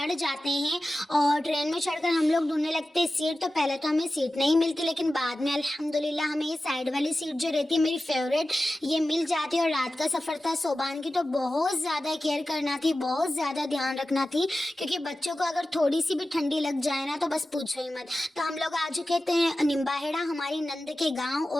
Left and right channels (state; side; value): normal; both; correlation 0.94